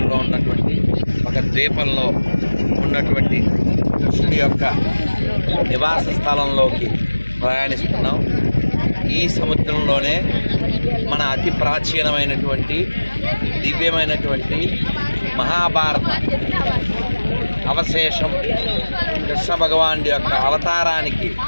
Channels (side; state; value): both; inverted; correlation -1.00